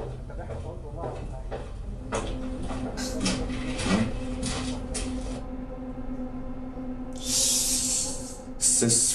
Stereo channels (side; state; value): both; identical; correlation 1.00